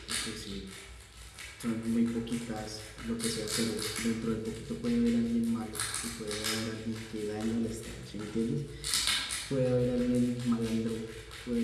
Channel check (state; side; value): identical; both; correlation 1.00